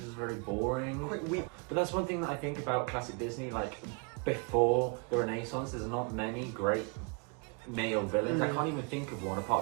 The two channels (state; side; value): quieter; left; 34.2 dB